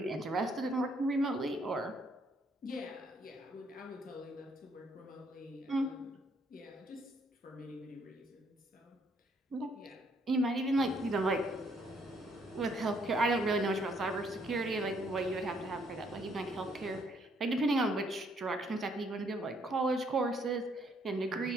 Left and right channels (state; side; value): normal; both; correlation 0.68